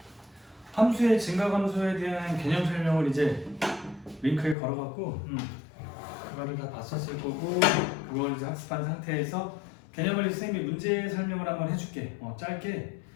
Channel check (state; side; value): drops out; right; at 4.5 s